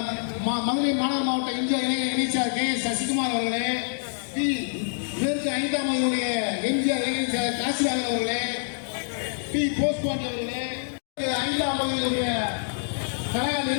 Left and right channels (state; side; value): silent; right; digital silence